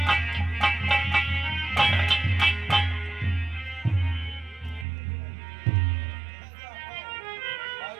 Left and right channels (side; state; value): left; drops out; at 4.9 s